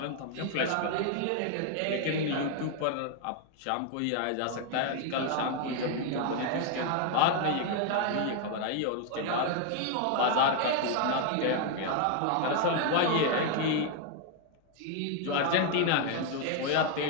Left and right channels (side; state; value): both; different; correlation 0.00